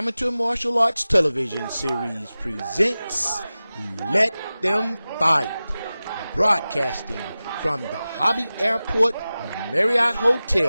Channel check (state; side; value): inverted; both; correlation -0.96